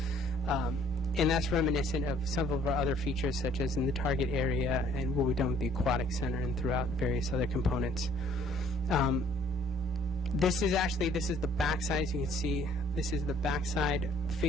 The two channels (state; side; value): normal; both; correlation 0.60